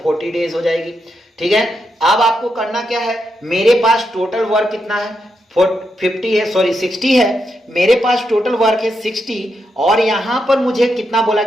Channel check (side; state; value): both; normal; correlation 0.83